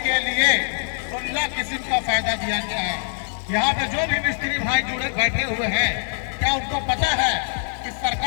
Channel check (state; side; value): silent; right; digital silence